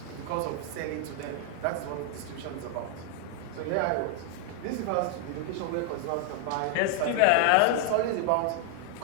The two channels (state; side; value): different; both; correlation 0.00